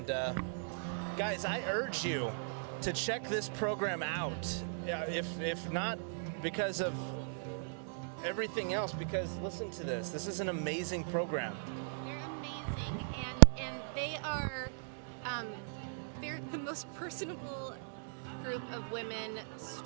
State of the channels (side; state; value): left; silent; digital silence